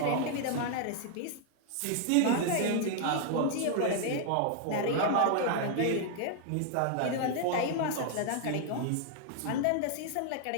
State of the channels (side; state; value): both; different; correlation 0.00